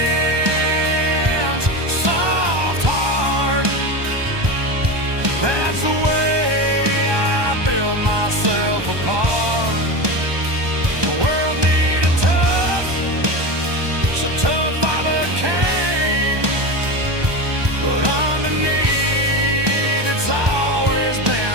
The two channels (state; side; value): late; left; 1.2 ms